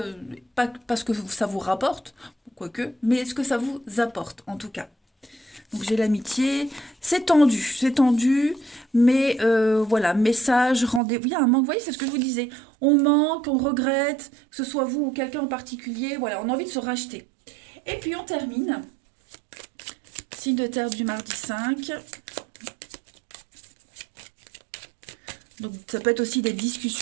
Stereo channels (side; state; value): left; drops out; at 11.0 s